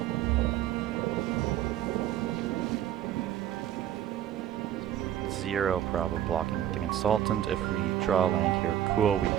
Zero problem blocking with the consultant. If we draw land here, cool, we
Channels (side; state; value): left; quieter; 11.3 dB